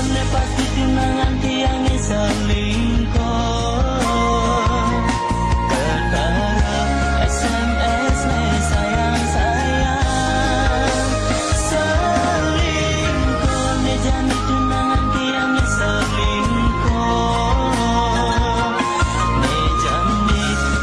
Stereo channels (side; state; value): both; identical; correlation 1.00